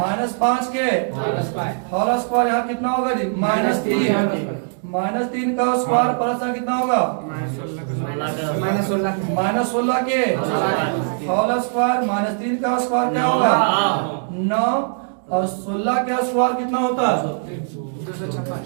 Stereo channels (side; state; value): left; silent; digital silence